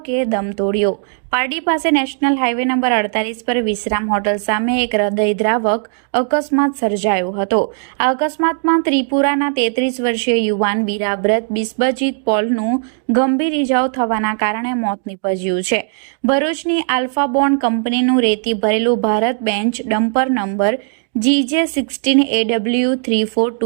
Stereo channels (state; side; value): silent; left; 68 dB below the other